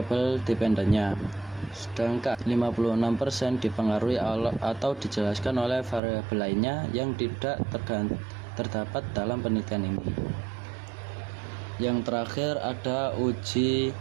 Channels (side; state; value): left; drops out; at 6.0 s